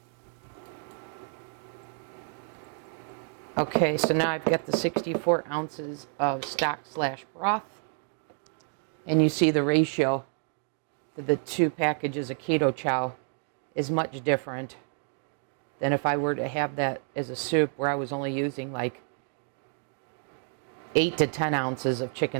Okay, so now I've got the 64 ounces of stock/broth. And you see the ratio to the two packages of Keto Chow is much different than if I were to have that as a soup where I was only using like 8 to 10 ounces of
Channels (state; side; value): silent; left; 57 dB below the other